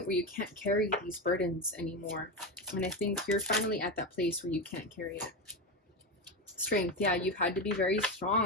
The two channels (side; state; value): both; normal; correlation 0.15